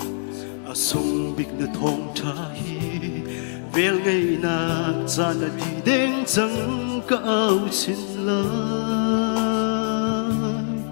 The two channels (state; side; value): silent; right; digital silence